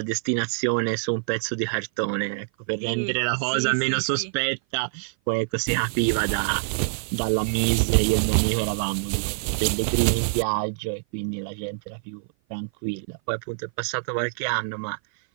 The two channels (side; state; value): left; silent; 56 dB below the other